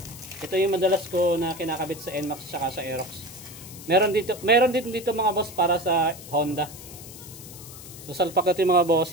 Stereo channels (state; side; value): noise; left; hiss, 15 dB below the sound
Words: Ito yung madalas ko na kinakabit sa NMAX saka sa Aerox. Meron din dito mga boss para sa Honda. So salpak ito yung mga